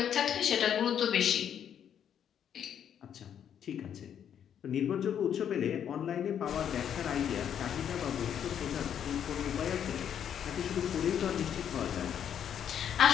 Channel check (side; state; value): right; quieter; 9.0 dB